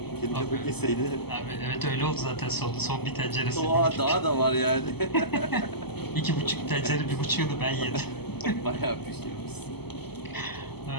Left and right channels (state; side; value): late; right; 0.97 ms